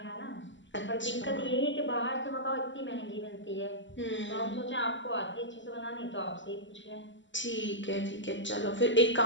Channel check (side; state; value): right; late; 0.54 ms